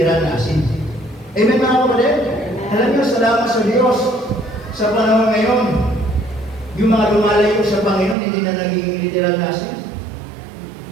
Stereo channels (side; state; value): left; drops out; at 8.2 s